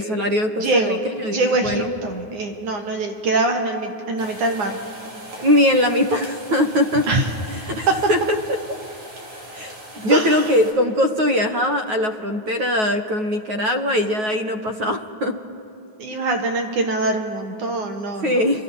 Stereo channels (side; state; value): left; late; 9.4 ms